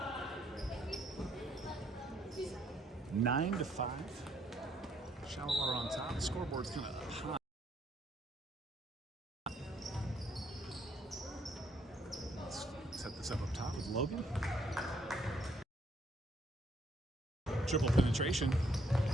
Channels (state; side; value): normal; both; correlation 0.69